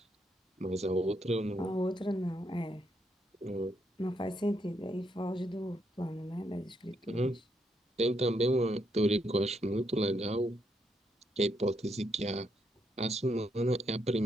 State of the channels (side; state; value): both; normal; correlation 0.77